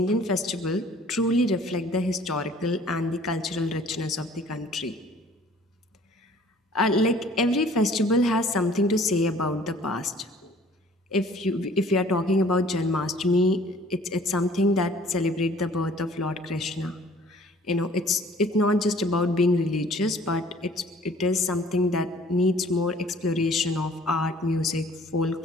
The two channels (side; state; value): both; normal; correlation 0.53